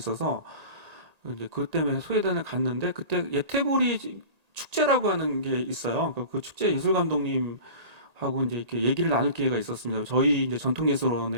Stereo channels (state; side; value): late; left; 1.8 ms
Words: 이제 그것 때문에 소외단을 갔는데 그때 예태보리 축제라고 하는 게 있어요. 그 축제 예술 감독님하고 이제 이렇게 얘기를 나눌 기회가 있었습니다. 저희 이제